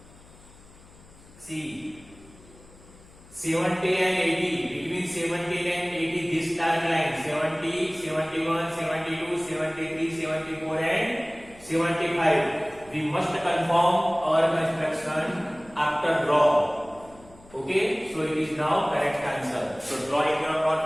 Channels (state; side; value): noise; left; hum, 24 dB below the sound